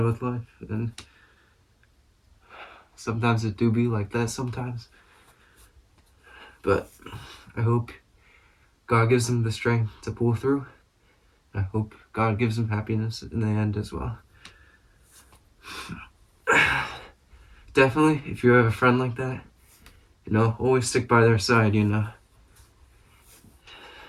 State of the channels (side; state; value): both; identical; correlation 1.00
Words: with life, and sometimes it do be like that sometimes. But I hope God gives him the strength to pull through. I hope God gives him happiness in the end as well. Definitely, if you have a friend like that, you know, always stick by their side, you know.